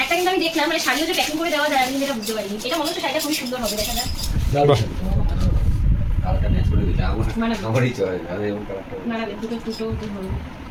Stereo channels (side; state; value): both; identical; correlation 1.00